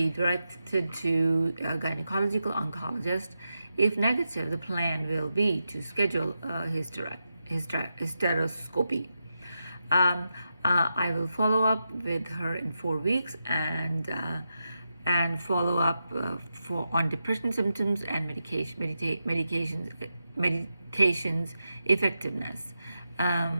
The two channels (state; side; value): inverted; both; correlation -0.88